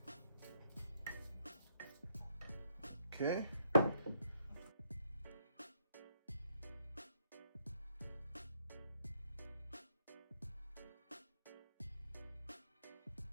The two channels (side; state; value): both; inverted; correlation -0.73